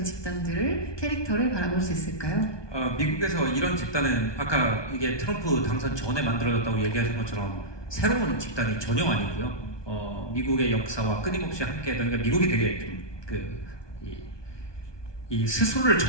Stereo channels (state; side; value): late; right; 1.2 ms